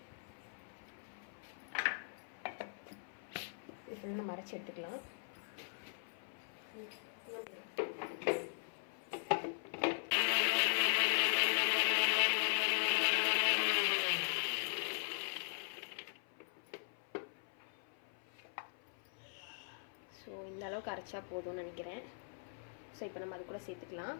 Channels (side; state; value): right; silent; 51 dB below the other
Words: இது ஃபுல்லாக நம்ம அரைச்சி எடுத்துக்கலாம். ஸோ இந்த அளவுக்கு அரைச்சா போதும்னு நினைக்கிறேன். ஸோ இப்போ நம்ம அது கூட சேர்த்துக்கலாம்.